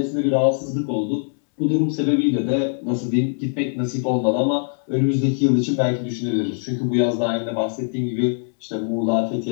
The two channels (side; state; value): right; silent; 64 dB below the other